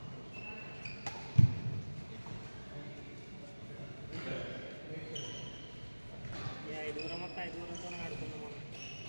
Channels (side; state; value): both; inverted; correlation -1.00